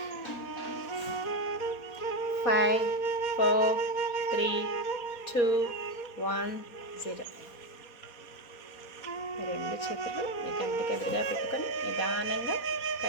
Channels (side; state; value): right; late; 4.2 ms